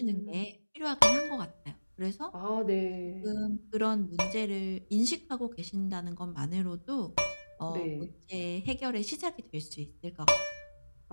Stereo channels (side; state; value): both; inverted; correlation -1.00